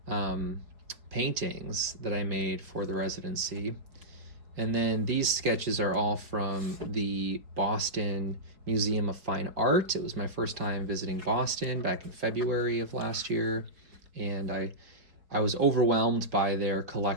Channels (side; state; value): left; late; 4.7 ms